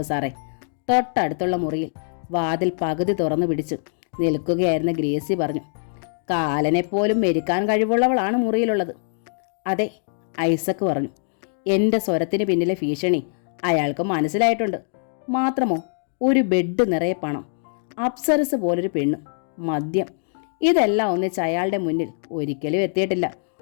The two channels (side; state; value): right; silent; digital silence